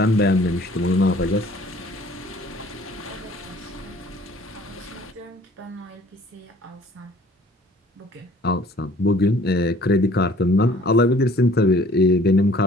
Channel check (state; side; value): normal; both; correlation 0.54